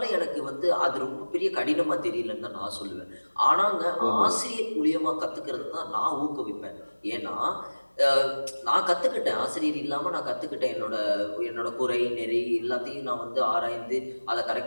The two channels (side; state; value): both; inverted; correlation -1.00